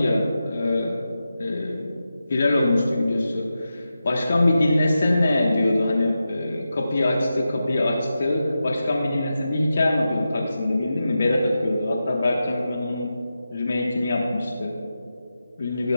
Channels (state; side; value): inverted; both; correlation -0.91